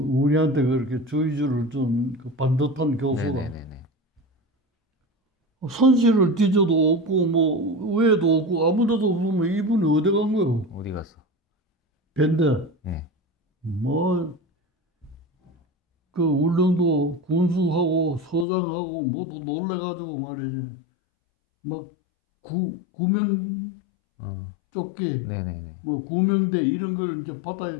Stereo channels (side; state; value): right; drops out; at 18.4 s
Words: 그렇게 주의주를 준 그 반듯한 교수가 선실을 뒤져도 없고 뭐 외에도 없고 아무데도 없으면 이분이 어디 간 거예요? 어디 갔어? 밴드. 뭐 그 울릉도 군수하고 서장하고 모두 놀래가지고 말이지. 막 구명 조끼, 뭐 구명대 이런 걸 이제 바다에